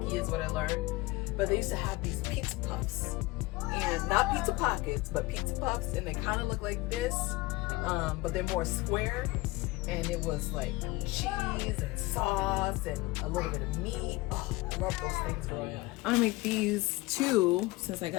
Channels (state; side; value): quieter; right; 21.2 dB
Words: is what I learned. But they used to have these pizza puffs, and not pizza pockets, but pizza puffs, and they kind of look like this, but they're more square. And it was like cheese and sauce and a little bit of meat. Oh, I love those things growing up. I'm gonna make these two since I